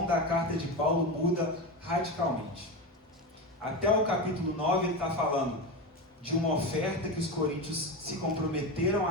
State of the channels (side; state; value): both; normal; correlation 0.20